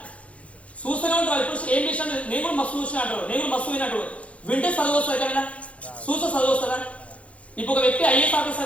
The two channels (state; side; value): late; right; 0.064 ms